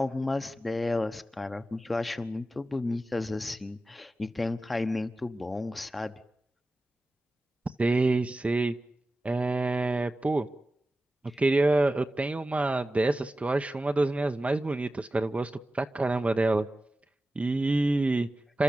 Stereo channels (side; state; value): both; normal; correlation 0.94